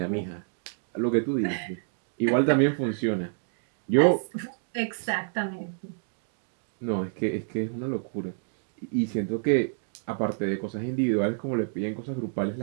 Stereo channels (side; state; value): left; silent; digital silence